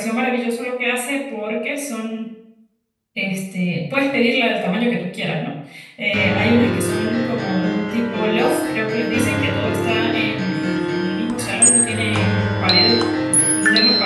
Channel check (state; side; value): identical; both; correlation 1.00